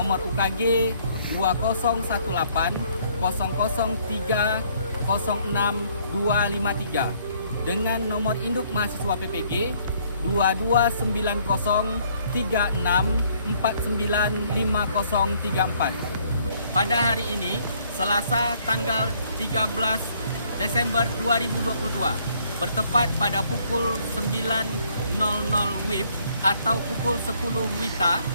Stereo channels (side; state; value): both; inverted; correlation -0.65